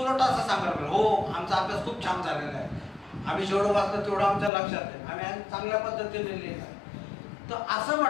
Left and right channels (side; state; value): right; drops out; at 4.5 s